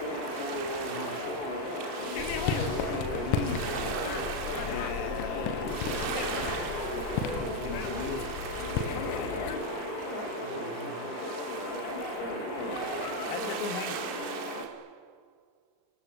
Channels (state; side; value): late; right; 38 ms